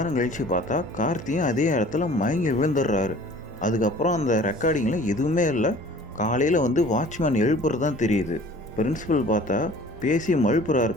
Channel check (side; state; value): both; normal; correlation 0.48